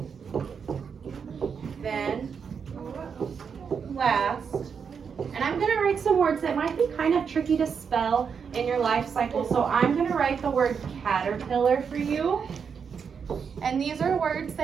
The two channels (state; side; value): quieter; left; 6.5 dB